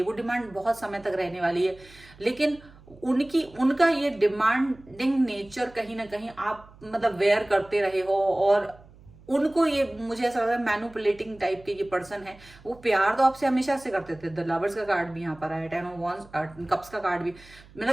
वो डिमांड बहुत समय तक रहने वाली है। लेकिन उनका ये डिमांडिंग नेचर कहीं ना कहीं आप मतलब वेयर करते रहे हो, और उनको ये मुझे ऐसा लग रहा है मैनिपुलेटिंग टाइप के ये पर्सन है। वो प्यार तो आपसे हमेशा से करते थे, द लवर्स का कार्ड भी यहाँ पर आया, 10 ऑफ वांड्स, कप्स का कार्ड भी,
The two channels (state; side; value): noise; right; hum, 23 dB below the sound